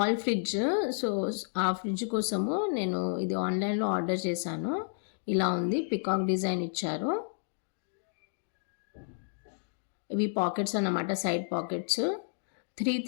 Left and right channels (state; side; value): silent; right; digital silence